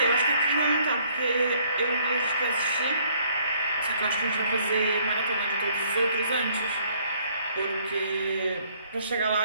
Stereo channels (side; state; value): both; inverted; correlation -0.63